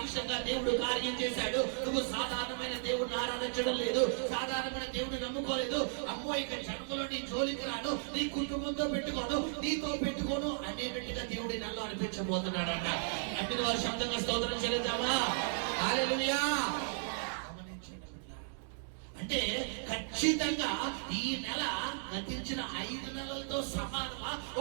దేవుడు కార్యం చేశాడు. నువ్వు సాధారణమైన దేవుడిని ఆరాధించడం లేదు, సాధారణమైన దేవుడిని నమ్ముకోలేదు. అమ్మో ఇక జన్మలో నీ జోలికి రాను, నీ కుటుంబంతో పెట్టుకోను, నీతో పెట్టుకోను అనేటట్టుగా దేవుడి నెలలో అనిపించబోతున్నాడంట. అన్ని వారి శబ్దంగా స్తోత్రం చెల్లిద్దామా? హల్లెలూయా. అంటే ఖచ్చితంగా ఈ నెల గతించిన 5 నెలలతో సమానమా?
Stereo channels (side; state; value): left; silent; digital silence